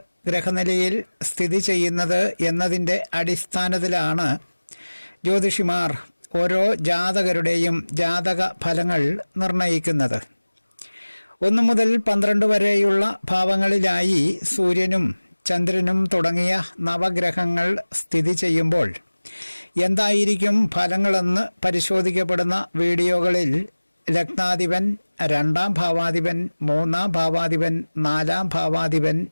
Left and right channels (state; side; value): inverted; both; correlation -1.00